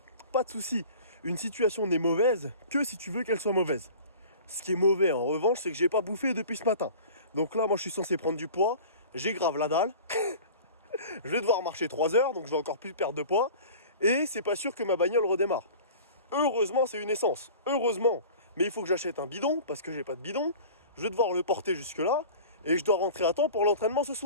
Pas de soucis. Une situation n'est mauvaise que si tu veux qu'elle soit mauvaise. Ce qui est mauvais en revanche, c'est que j'ai pas bouffé depuis ce matin. Donc là, moi je suis censé prendre du poids. J'ai grave la dalle. Je vais devoir marcher 3 heures, donc je vais encore plus perdre de poids. Et c'est pas sûr que ma bagnole redémarre. Heureusement, c'est une essence. Heureusement. Mais il faut que j'achète un bidon, parce que j'ai pas de bidon. Je vais devoir le porter jusque là. Et je dois rentrer à temps pour l'entraînement ce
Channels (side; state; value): both; inverted; correlation -0.41